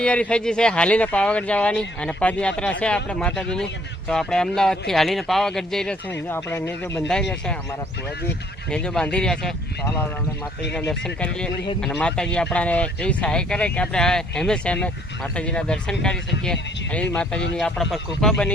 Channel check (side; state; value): both; normal; correlation 0.62